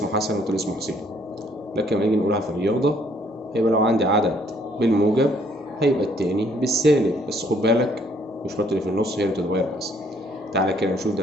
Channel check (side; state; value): both; normal; correlation 0.65